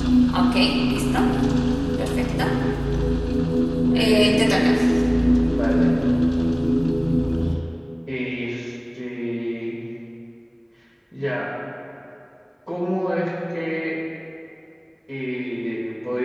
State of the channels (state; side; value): identical; both; correlation 1.00